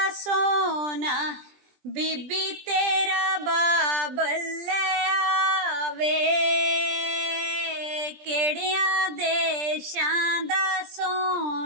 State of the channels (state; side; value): late; left; 20 ms